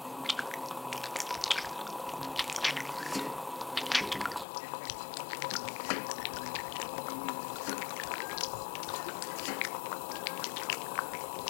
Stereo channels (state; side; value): drops out; right; at 4.5 s